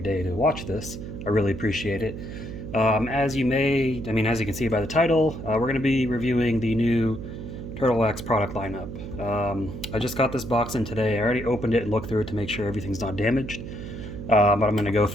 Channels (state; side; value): noise; right; hum, 9 dB below the sound